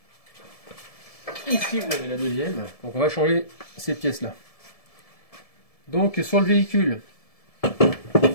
Ici vous avez la deuxième, donc on va changer ces pièces là. Donc sur le véhicule,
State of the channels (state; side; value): late; right; 1.7 ms